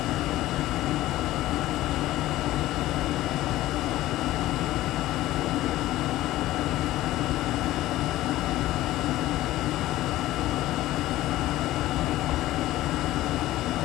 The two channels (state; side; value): quieter; right; 15.8 dB